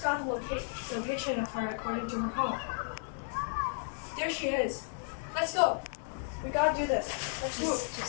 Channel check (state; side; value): silent; right; digital silence